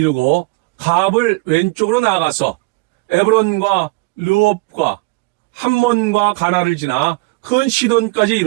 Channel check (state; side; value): quieter; left; 26.3 dB